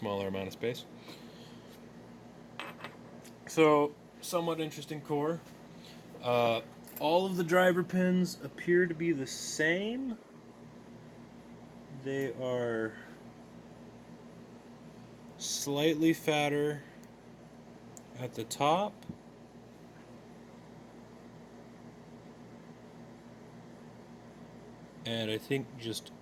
amount of space. So, somewhat interesting core. All of the driver pins appear to be the same. They are slightly fatter at the top. And I think just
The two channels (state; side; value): identical; both; correlation 1.00